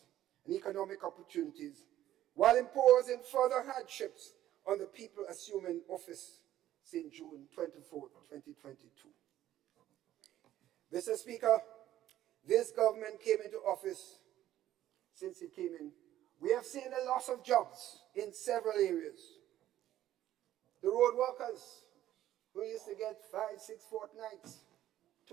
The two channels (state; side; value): quieter; left; 12.9 dB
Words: and economic opportunities, while imposing further hardships on the people assuming office since June 24, 2022. Mr. Speaker, this government came into office. Since it came in, we have seen a loss of jobs in several areas. The road workers who used to get 5, 6 fortnights,